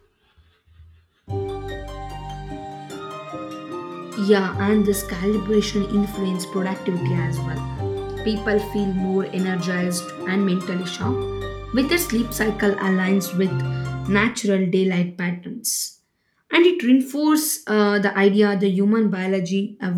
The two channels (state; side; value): identical; both; correlation 1.00